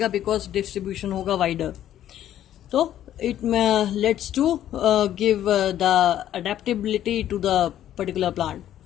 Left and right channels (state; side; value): quieter; right; 11.6 dB